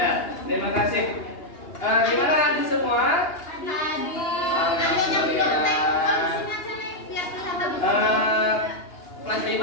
terima kasih. Gimana Andi semua? Alhamdulillah. Kelas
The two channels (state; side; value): late; right; 2.8 ms